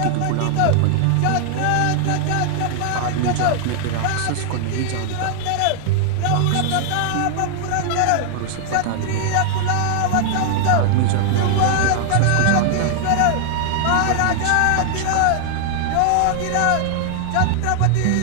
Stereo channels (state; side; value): different; both; correlation 0.00